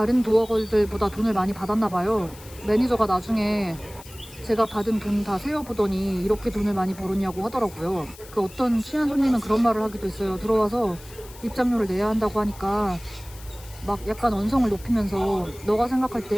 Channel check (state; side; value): noise; left; hiss, 20 dB below the sound